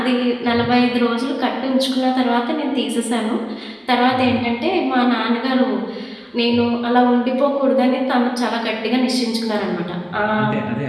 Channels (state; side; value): identical; both; correlation 1.00